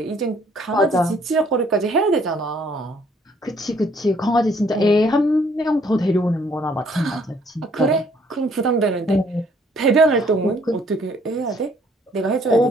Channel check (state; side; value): normal; both; correlation 0.63